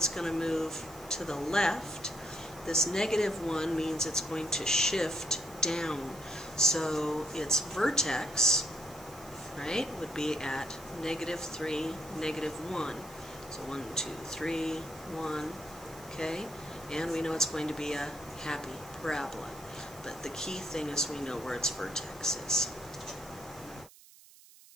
going to move to the left. This -1 means it's going to shift down. So its vertex, right, would be at -3, -1. So 1, 2, 3, 1, okay? And we know it's going to be a happy parabola. But the key thing is we know where its vertex is.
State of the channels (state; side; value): noise; right; hiss, 22 dB below the sound